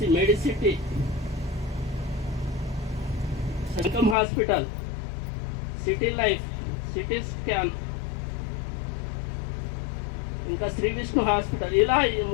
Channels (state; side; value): drops out; right; at 4.2 s